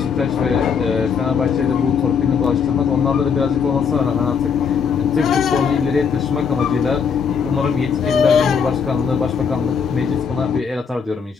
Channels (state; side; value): quieter; right; 6.3 dB